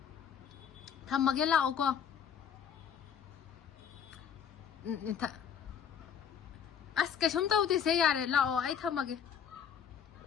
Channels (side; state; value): right; quieter; 8.0 dB